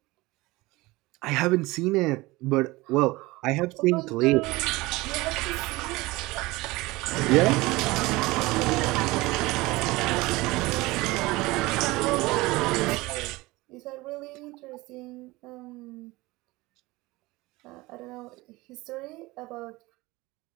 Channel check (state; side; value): quieter; left; 21.2 dB